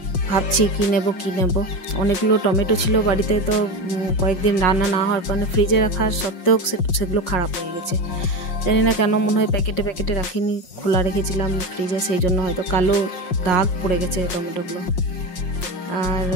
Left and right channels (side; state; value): right; late; 5.5 ms